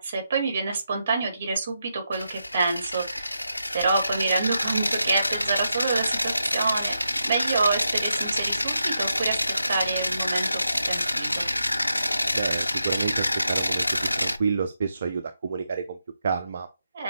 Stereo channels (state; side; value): inverted; both; correlation -0.85